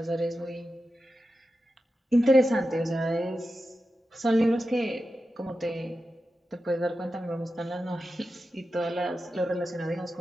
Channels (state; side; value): normal; both; correlation 0.91